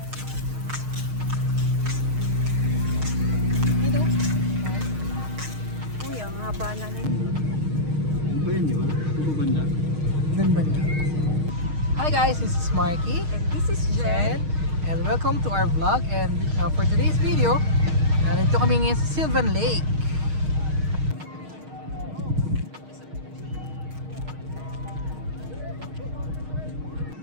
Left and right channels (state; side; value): late; left; 6.4 ms